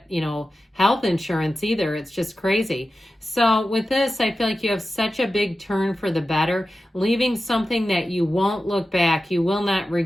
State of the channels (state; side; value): normal; both; correlation 0.93